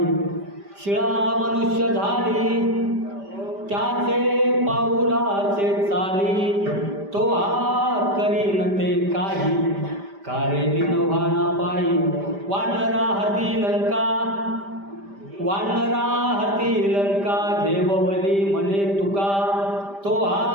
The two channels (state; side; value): late; left; 5.1 ms